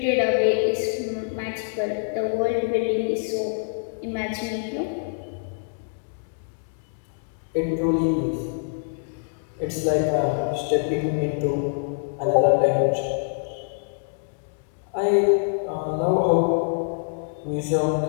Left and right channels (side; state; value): right; silent; digital silence